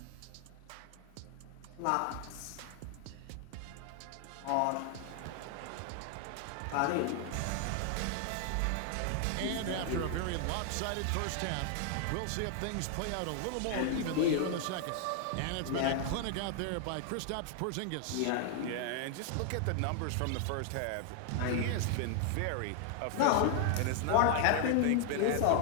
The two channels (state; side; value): different; both; correlation 0.00